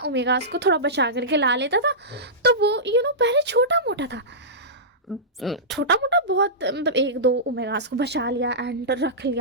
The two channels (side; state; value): both; normal; correlation -0.17